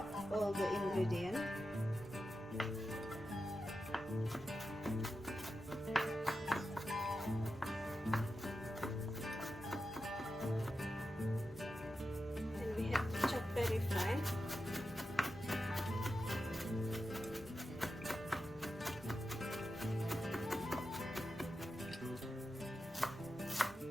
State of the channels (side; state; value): both; normal; correlation 0.90